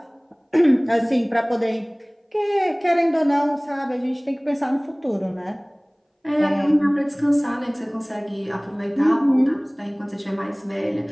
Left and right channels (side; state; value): both; identical; correlation 1.00